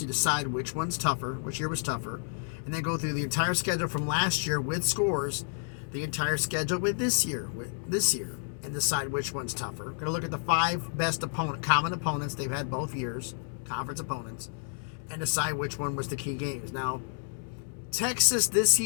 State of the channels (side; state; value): right; silent; digital silence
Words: you decide which one's tougher, which year was tougher, and then go through the entire schedule from last year with scores, the entire schedule with this year, and decide which one's tougher. We're going to look at the 5 best common opponents they've had both years, conference opponents, and decide which one was the key games. Now, Texas this